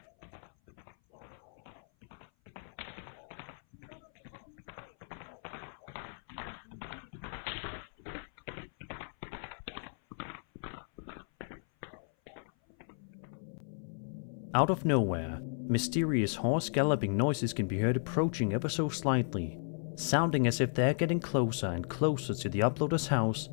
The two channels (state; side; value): silent; right; 55 dB below the other